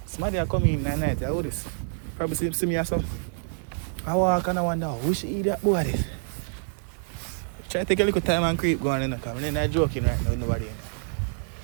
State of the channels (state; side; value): silent; left; digital silence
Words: Somebody are coming in at night, I this. Probably see me or something. I walk and I wonder, we should eat that boy this. Try to take a little time and creep going in the car. I'm not joking right now with nobody in